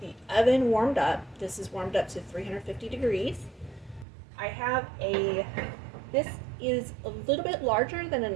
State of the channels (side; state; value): left; drops out; at 4.0 s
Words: oven warmed up. This is warmed up to 350 degrees. This is a little bit larger than a